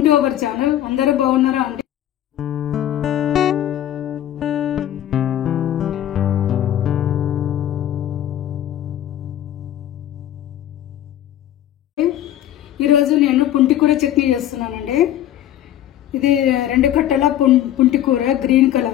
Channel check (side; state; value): right; quieter; 12.0 dB